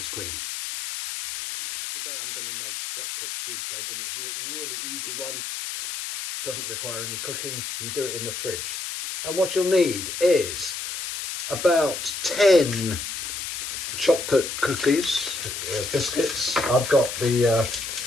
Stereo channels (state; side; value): noise; left; hiss, 5 dB below the sound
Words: Queen. Now, today I'm going to make chocolate cheesecake, and it's a really easy one. Doesn't require any cooking. You do it in the fridge. And what you'll need is about 10 chocolate cookies, biscuits. I've got the